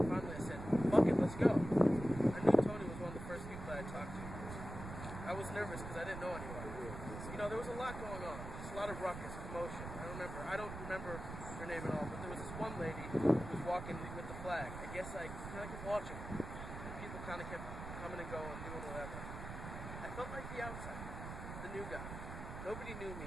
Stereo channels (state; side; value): noise; right; rumble, 8 dB below the sound